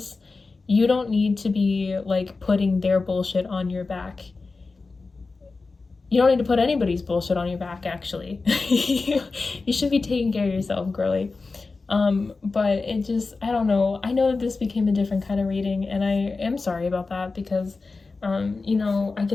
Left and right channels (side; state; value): right; quieter; 4.0 dB